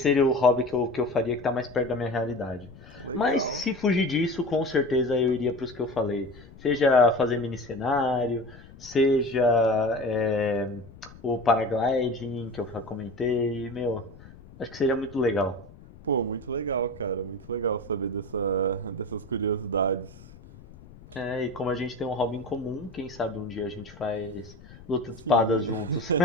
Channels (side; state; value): left; noise; rumble, 20 dB below the sound